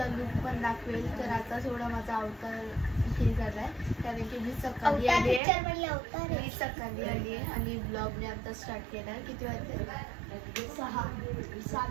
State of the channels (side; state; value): left; drops out; at 5.4 s